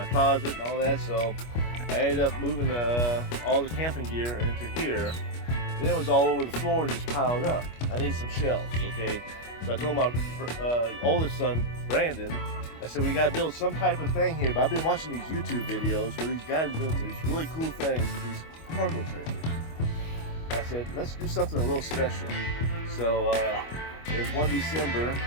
closet and all that, so I ended up moving all the camping gear into here. Then it was all over the floor and just piled up. I need some shelves, okay? So I told my oldest son, Brandon, I said, we gotta build some type of thing here, but I've been watching these YouTube videos where these guys build these really cool things with these cargo trailers. I said, let's do something a little special. So it was one December,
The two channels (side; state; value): right; late; 25 ms